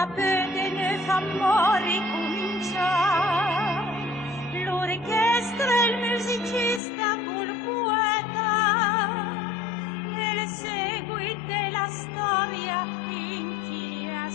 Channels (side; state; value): right; drops out; at 6.8 s